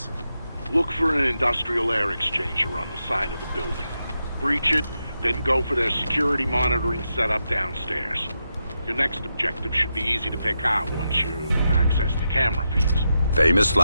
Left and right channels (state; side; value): inverted; both; correlation -0.86